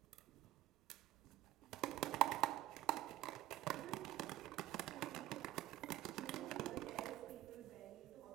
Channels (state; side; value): quieter; left; 15.1 dB